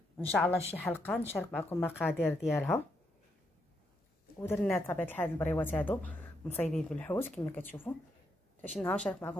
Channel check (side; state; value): both; normal; correlation 0.79